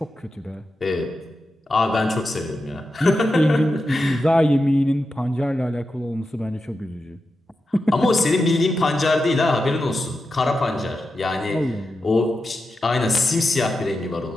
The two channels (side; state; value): both; normal; correlation 0.90